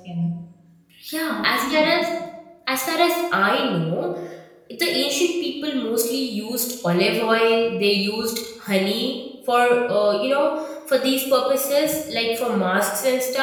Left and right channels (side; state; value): both; identical; correlation 1.00